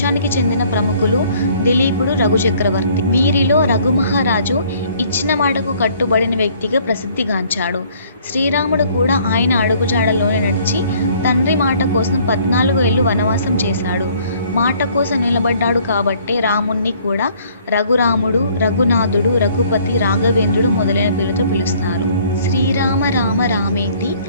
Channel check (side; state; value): both; inverted; correlation -0.59